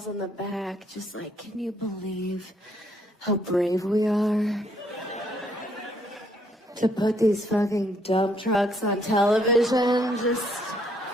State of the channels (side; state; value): both; normal; correlation 0.69